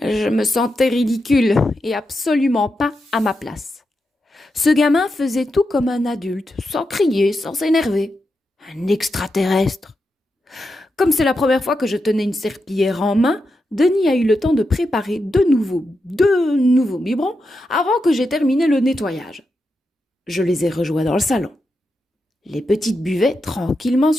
Je me sentais ridicule et absolument pas à ma place. Ce gamin faisait tout comme un adulte, sans crier, sans s'énerver. Un extraterrestre. Comme c'est la première fois que je tenais une serpillière en main, Denis a eu le temps de préparer deux nouveaux biberons avant que j'aie terminé le nettoyage. Je les ai rejoints dans le salon. Les petites buvaient tranquillement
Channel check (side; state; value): both; normal; correlation 0.87